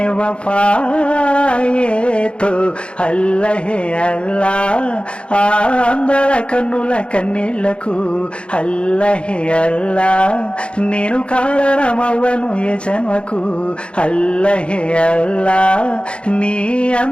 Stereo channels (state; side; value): late; right; 0.058 ms